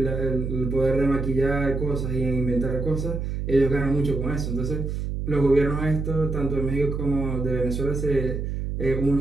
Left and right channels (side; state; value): right; noise; hum, 3 dB below the sound